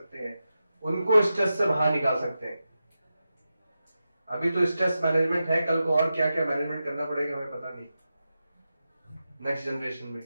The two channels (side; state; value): both; inverted; correlation -0.91